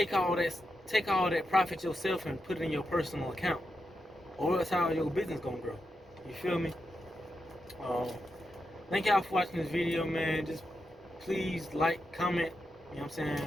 all that profit yourself and put it in your personal account, or else how your business gonna grow. You feel me? Thank y'all for watching this video, man. Just please like, comment, you know what I'm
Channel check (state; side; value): normal; both; correlation 0.86